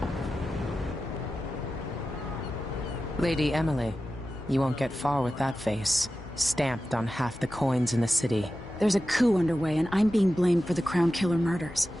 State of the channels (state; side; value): normal; both; correlation 0.93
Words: Lady Emily, you won't get far with that face. Stamped on half the coins in the city. There's a coup underway, and I'm being blamed for the Crown Killer murders.